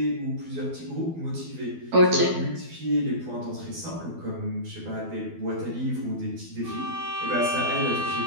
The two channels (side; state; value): left; late; 12 ms